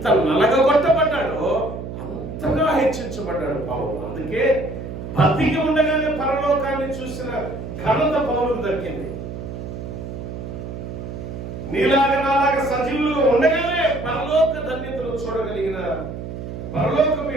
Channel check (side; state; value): right; noise; hum, 8 dB below the sound